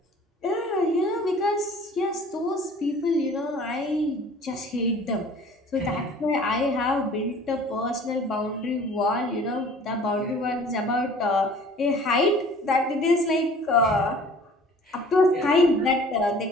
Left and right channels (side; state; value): both; normal; correlation 0.48